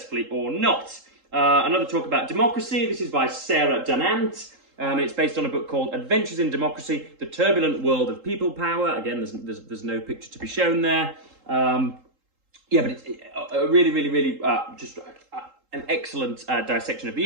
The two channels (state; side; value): late; left; 3.8 ms